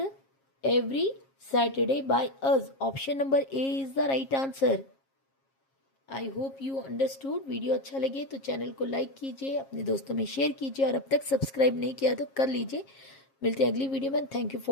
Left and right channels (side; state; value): right; late; 7.4 ms